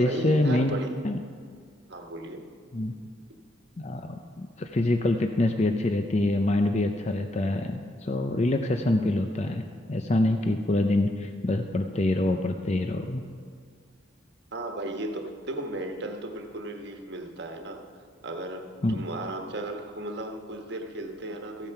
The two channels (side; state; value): both; normal; correlation 0.75